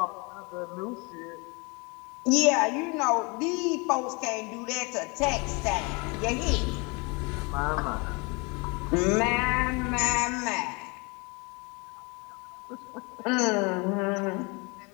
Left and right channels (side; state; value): right; quieter; 29.1 dB